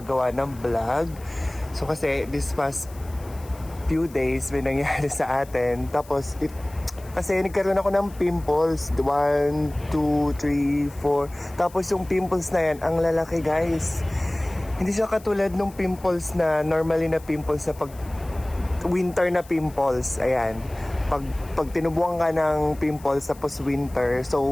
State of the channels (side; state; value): left; noise; hiss, 23 dB below the sound